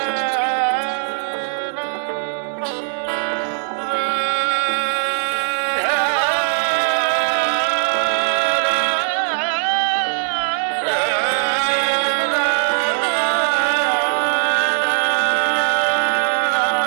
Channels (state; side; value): silent; left; digital silence